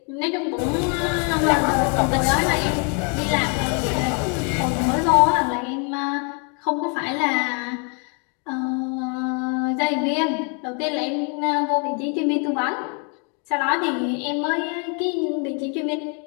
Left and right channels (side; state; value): right; quieter; 37.3 dB